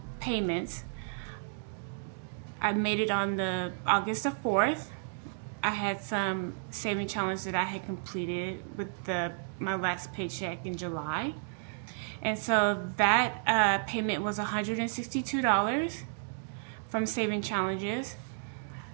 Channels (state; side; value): silent; left; digital silence